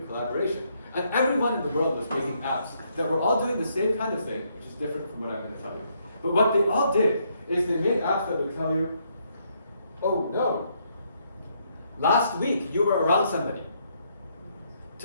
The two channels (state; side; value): inverted; both; correlation -0.73